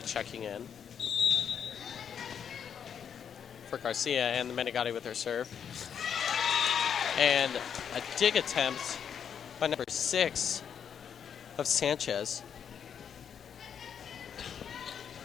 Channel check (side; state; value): right; quieter; 7.9 dB